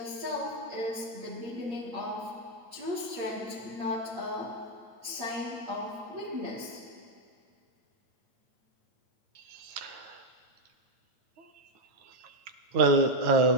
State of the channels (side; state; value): left; late; 8.6 ms